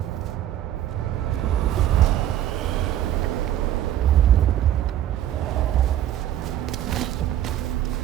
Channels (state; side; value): quieter; left; 11.8 dB